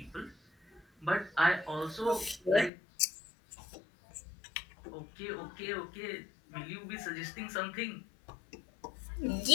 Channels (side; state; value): right; drops out; at 2.7 s